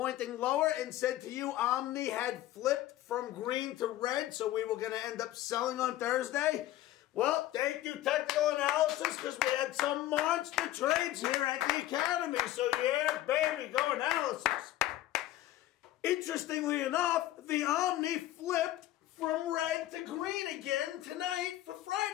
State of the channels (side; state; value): right; quieter; 14.6 dB